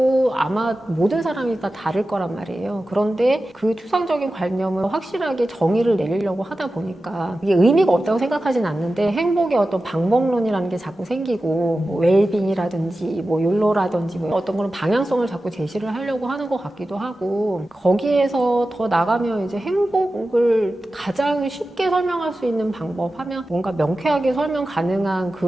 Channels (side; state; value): both; normal; correlation 0.94